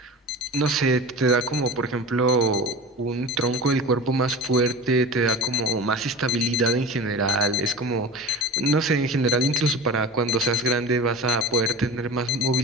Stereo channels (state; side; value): normal; both; correlation 0.33